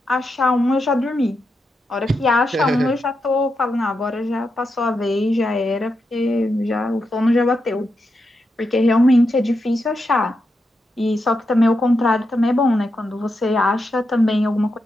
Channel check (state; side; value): normal; both; correlation 0.86